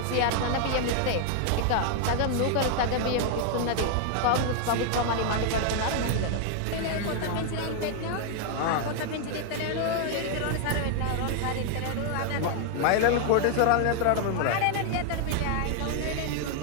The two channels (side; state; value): both; different; correlation 0.00